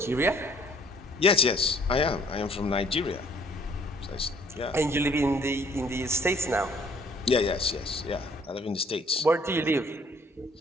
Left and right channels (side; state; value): both; normal; correlation 0.59